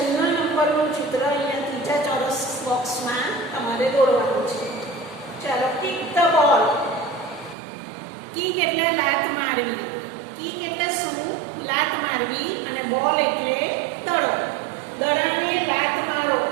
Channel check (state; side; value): drops out; left; at 7.6 s